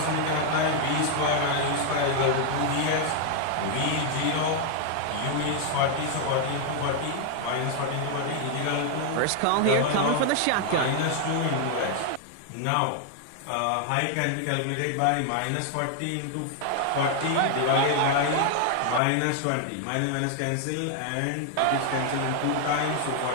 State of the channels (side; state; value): both; different; correlation 0.00